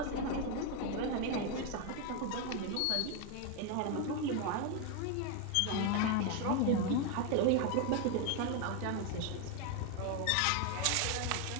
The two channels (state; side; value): different; both; correlation 0.01